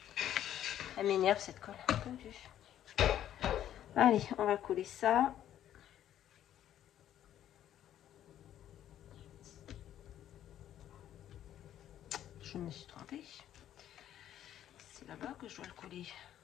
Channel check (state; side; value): quieter; right; 11.3 dB